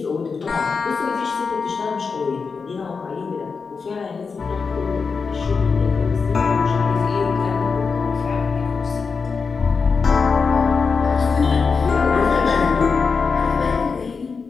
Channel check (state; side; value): quieter; right; 5.1 dB